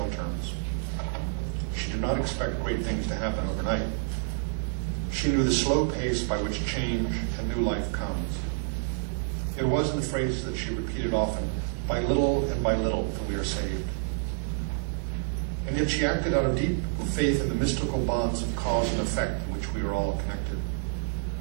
terms. She did not expect great things to happen overnight. She knew the slow pace by which change and new life comes. It was in the phrases that she repeated often, by little and by little that we are saved. And yet she acted out of deep faith in the mystical bonds of cause and effect in which we are all connected.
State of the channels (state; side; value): silent; left; digital silence